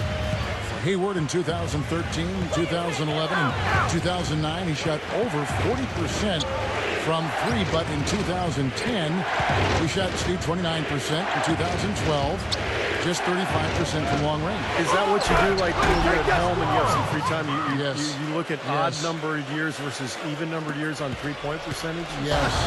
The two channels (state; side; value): identical; both; correlation 1.00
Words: Hayward in 2013, 2011, and 2009, he shot over 40% from 3, but in 2010, he shot 29%. In 2012, just 35% from long range. Is that what you do, like when you're at home and you have some free time? You look at odd numbered years versus even numbered years on three-point percentage? Yes.